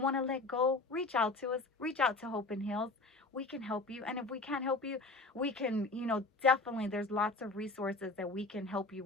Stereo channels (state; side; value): quieter; right; 3.3 dB